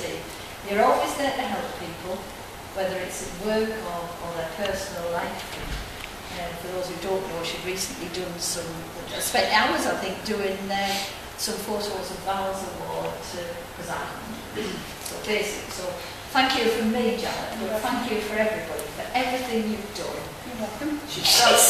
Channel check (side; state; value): both; identical; correlation 1.00